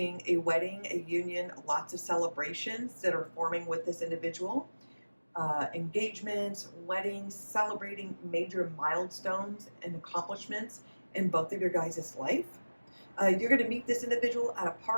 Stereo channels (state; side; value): inverted; both; correlation -1.00